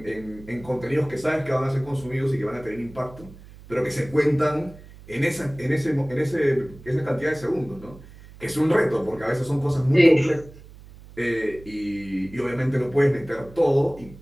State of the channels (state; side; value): noise; right; hum, 20 dB below the sound